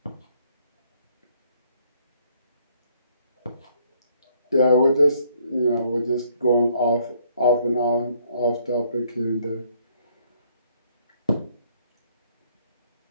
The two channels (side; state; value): both; inverted; correlation -0.66